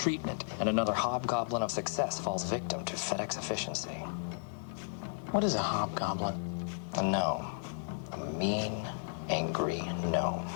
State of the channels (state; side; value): silent; right; 55 dB below the other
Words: And another hobgoblin of success falls victim to FedEx efficiency. What is a hobgoblin? A gnome. A mean, angry gnome.